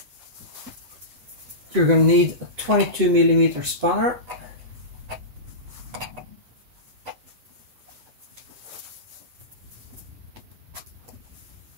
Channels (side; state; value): left; late; 8.1 ms